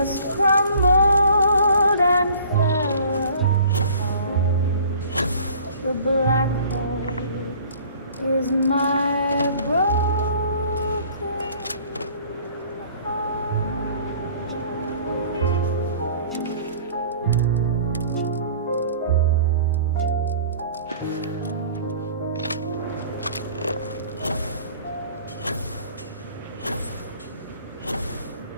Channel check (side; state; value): both; inverted; correlation -0.50